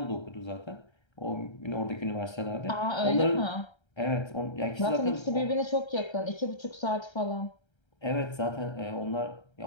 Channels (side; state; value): right; late; 1.3 ms